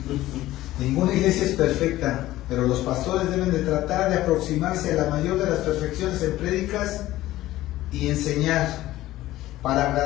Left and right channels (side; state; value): right; quieter; 15.7 dB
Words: Ninguna iglesia es perfecta, pero los pastores deben de tratar de aproximarse a la mayor de las perfecciones en prédicas y enseñar para